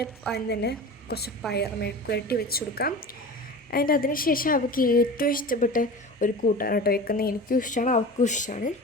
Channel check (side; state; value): both; normal; correlation 0.34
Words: അതിന് തന്നെ കുറച്ച് പയർ മെഴുക്ക് പുരട്ടി വെച്ച് കൊടുക്കാം. അതിന് ശേഷം അവൾക്ക് ഏറ്റവും ഇഷ്ടപ്പെട്ട ഒരു കൂട്ടാണ് കേട്ടോ വെക്കുന്നത്. എനിക്കും ഇഷ്ടമാണ്, അവൾക്കും ഇഷ്ടമാണ്.